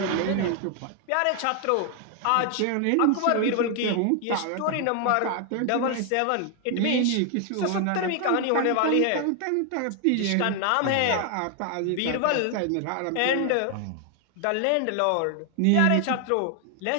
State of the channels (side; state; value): both; different; correlation 0.00